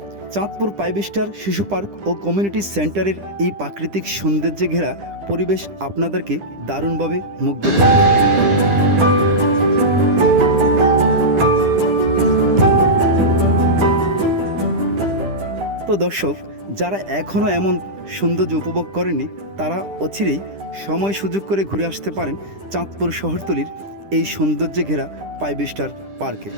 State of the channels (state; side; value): late; left; 10 ms